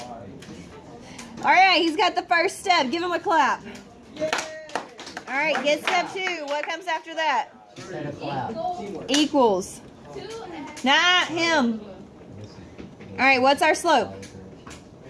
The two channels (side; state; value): both; identical; correlation 1.00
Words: All right, he's got the first step. Give him a clap. All right, get step 2. What comes after that? Set a cloud. Equals. 2x. Not him. All right, what's our slope?